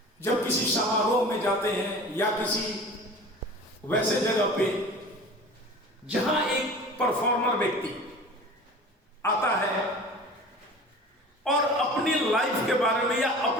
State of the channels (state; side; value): normal; both; correlation 0.39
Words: जब किसी समारोह में जाते हैं या किसी वैसे जगह पे जहां एक परफॉर्मर व्यक्ति आता है और अपनी लाइफ के बारे में या